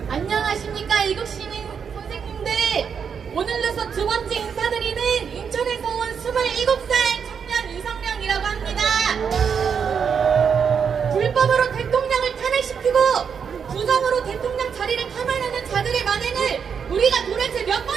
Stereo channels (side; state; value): left; quieter; 6.8 dB